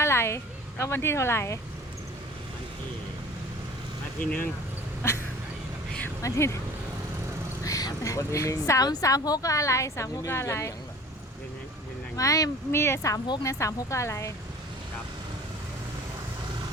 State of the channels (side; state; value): both; normal; correlation 0.45